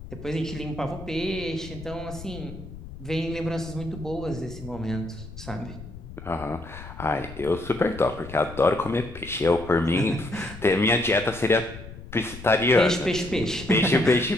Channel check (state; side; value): noise; left; rumble, 14 dB below the sound